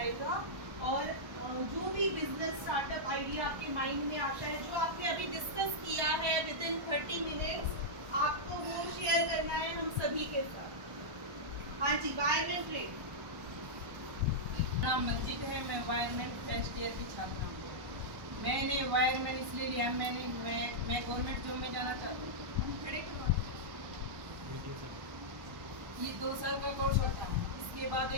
और जो भी बिजनेस स्टार्टअप आइडिया आपके माइंड में आता है, जो आपने अभी डिस्कस किया है विद इन 30 मिनट्स, आपको वो शेयर करना है हम सभी के साथ। हाँ जी, वायरमैन ट्रेड। नाम मंजित है, मैं वायरमैन फर्स्ट ईयर की छात्रा हूँ। मैंने वायरमैन इसलिए लिया, मैं गवर्नमेंट जॉब में जाना चाहती हूँ। ये 2 साल का कोर्स होता है, इसके बाद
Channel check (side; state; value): left; late; 1.2 ms